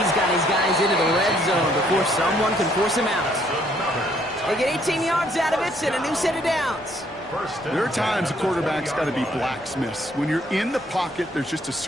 got his guys into the red zone before someone can force him out. They get 18 yards out of it and a new set of downs. There are times a quarterback's got to be blacksmiths. When you're in the pocket, there's just a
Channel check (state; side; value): normal; both; correlation 0.66